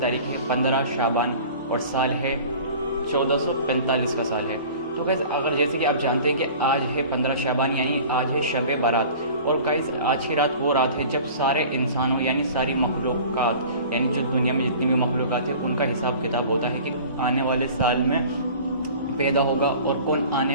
तारीख है 15 शाबान और साल है 1445 का साल है। तो गाइस, अगर जैसे कि आप जानते हैं कि आज है 15 शाबान यानी आज है शब बारात। और गाइस, आज की रात वो रात है जब सारे इंसानों यानी सारी मखलूक़ात यानी जो दुनिया में जितनी भी मखलूक़ात है उनका हिसाब किताब होता है कि आने वाले साल में पैदा होगा और कौन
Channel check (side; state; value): both; inverted; correlation -0.43